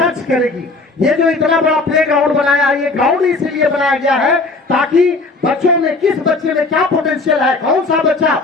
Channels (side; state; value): right; quieter; 3.5 dB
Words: करेगी। ये जो इतना बड़ा प्ले ग्राउंड बनाया है, ये ग्राउंड इसीलिए बनाया गया है ताकि बच्चों में किस बच्चे में क्या पोटेंशियल है, कौन सा बच्चा